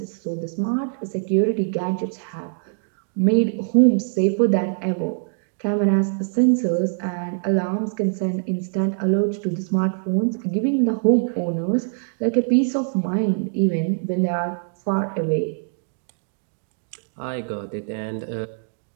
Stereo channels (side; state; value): left; silent; digital silence